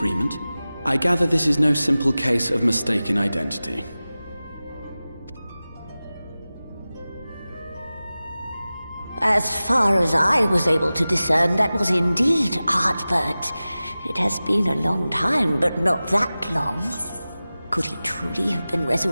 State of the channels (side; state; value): both; inverted; correlation -0.96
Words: I gather this is no simple case of mistaken identity. As far as I was able to discern, that was indeed Ardbert. It has been a long time, but not that long. Could he truly have been